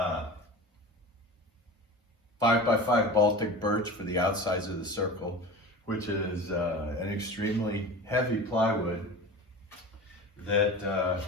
5x5 Baltic birch for the outsides of the circle, which is an extremely heavy plywood that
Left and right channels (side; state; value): both; normal; correlation 0.33